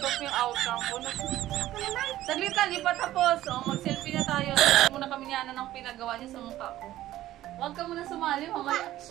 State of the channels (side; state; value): left; quieter; 14.4 dB